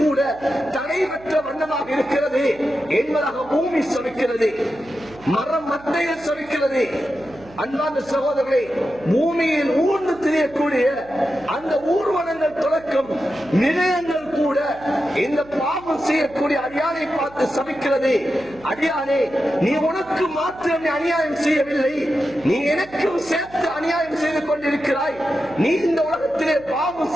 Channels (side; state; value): right; noise; hum, 22 dB below the sound